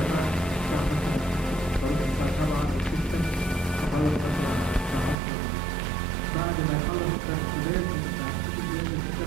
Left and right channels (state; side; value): drops out; left; at 5.2 s